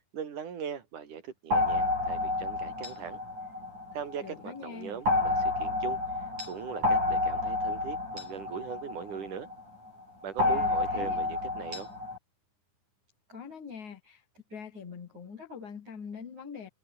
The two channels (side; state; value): left; late; 9.7 ms